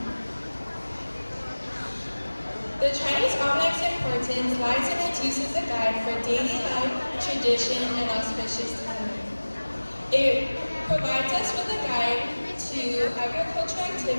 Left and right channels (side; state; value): both; inverted; correlation -1.00